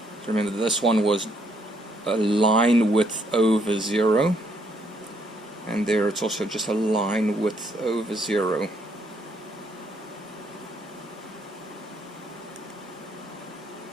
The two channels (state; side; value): normal; both; correlation 0.71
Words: So remember, this one was a line width over 0. And there it's also just a line width over 0.